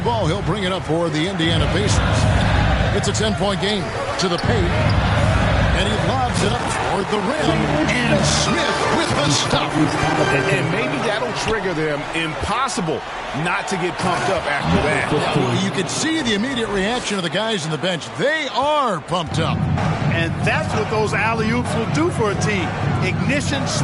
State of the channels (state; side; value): identical; both; correlation 1.00